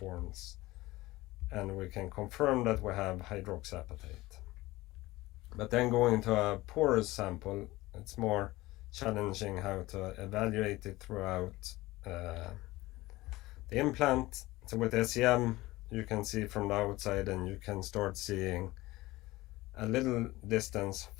and we can confirm that we have hydroxyapatite. But then going to a porous sample, it's more challenging how to evaluate it throughout the implant. So with SEM, you can see from the outside, and you can start seeing a little distance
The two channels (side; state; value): right; quieter; 19.2 dB